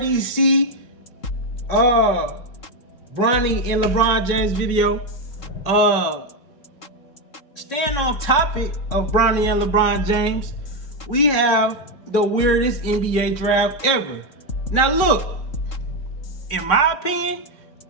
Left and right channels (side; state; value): right; late; 3.8 ms